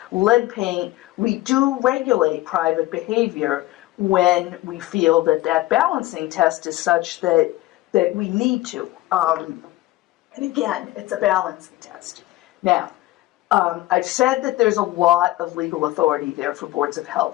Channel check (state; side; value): quieter; right; 17.7 dB